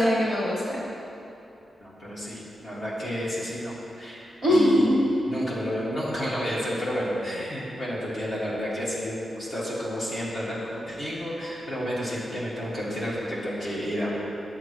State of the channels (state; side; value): normal; both; correlation 0.86